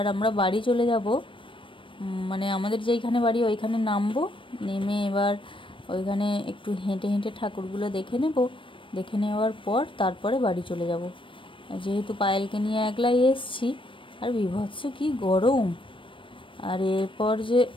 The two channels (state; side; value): late; right; 0.25 ms